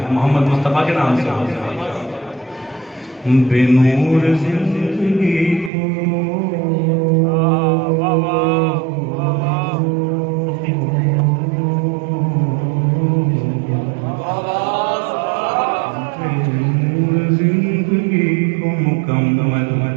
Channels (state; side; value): drops out; left; at 5.7 s